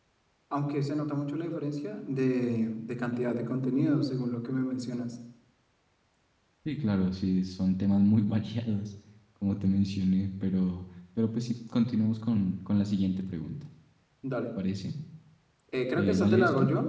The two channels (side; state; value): both; identical; correlation 1.00